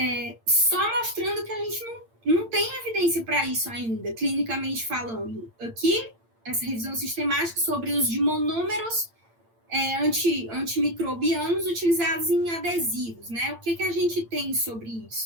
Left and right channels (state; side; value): late; left; 8.8 ms